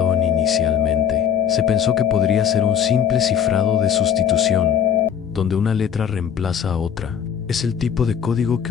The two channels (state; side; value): quieter; right; 8.5 dB